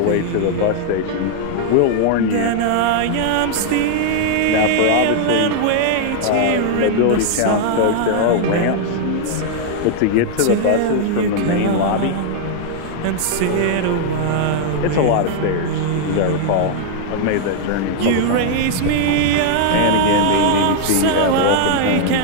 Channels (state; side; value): different; both; correlation 0.00